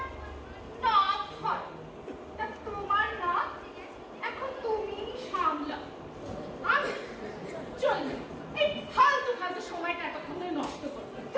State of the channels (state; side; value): identical; both; correlation 1.00